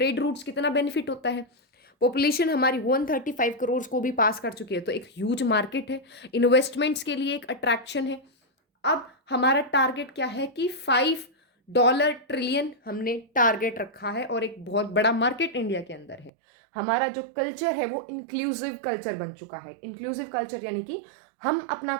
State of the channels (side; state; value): left; drops out; at 16.3 s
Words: रूट्स कितना बेनिफिट होता है। पॉपुलेशन हमारी 135 करोड़ को भी पास कर चुकी है, तो एक ह्यूज मार्केट है, इन्वेस्टमेंट्स के लिए एक अट्रैक्शन है। अब हमारा टारगेट क्या है कि $5 ट्रिलियन हमने टारगेट रखा है, और एक बहुत बड़ा मार्केट इंडिया के अंदर है। हमारा जो कल्चर है वो इंक्लूसिव कल्चर बन चुका है। इंक्लूसिव कल्चर यानी कि हम अपना